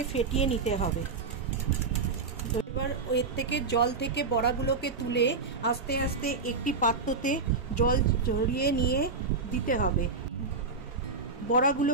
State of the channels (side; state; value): left; quieter; 4.3 dB